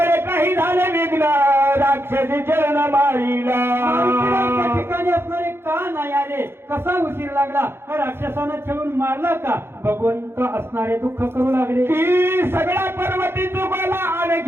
काही झाले विघ्न राक्षसी चरण मारीला. मारुतीला त्या ठिकाणी असणारे का नाही आले, कसा उशीर लागला, हा राक्षसानं छळून मारला का? भगवंत असणारे दुःख करू लागले की सगळ्या पर्वती चुकला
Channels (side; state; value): left; late; 0.11 ms